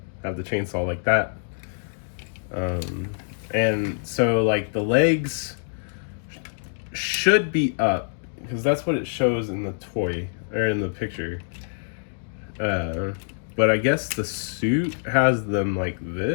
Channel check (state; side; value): silent; right; digital silence